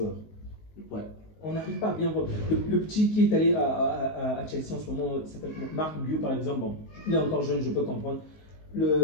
Ouais. On n'arrive pas à bien voir. Le petit qui est allé à Chelsea en ce moment, s'appelle Marc Guiu par exemple, bon, il est encore jeune, je peux comprendre.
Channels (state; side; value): late; right; 19 ms